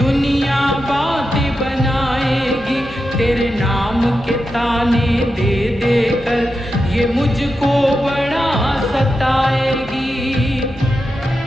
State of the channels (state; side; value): normal; both; correlation 0.89